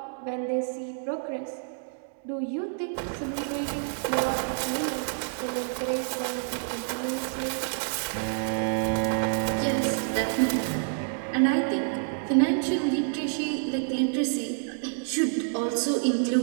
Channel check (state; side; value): silent; left; digital silence